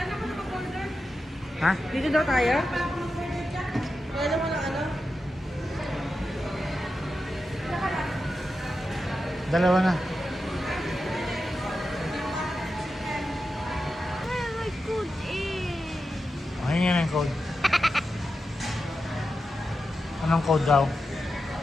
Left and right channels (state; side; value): normal; both; correlation 0.90